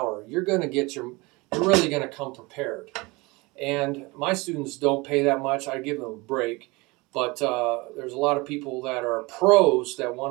you're really going to come prepared. And my students don't pay that much. I give them a break. But there's a lot of people that are pros that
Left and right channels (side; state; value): left; quieter; 24.5 dB